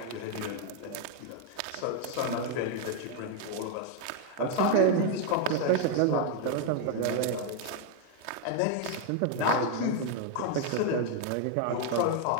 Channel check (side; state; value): both; different; correlation 0.00